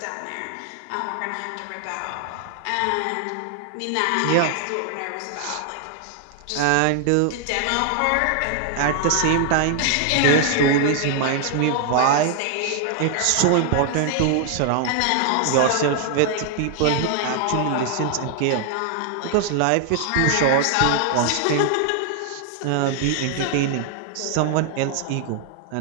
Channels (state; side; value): different; both; correlation 0.00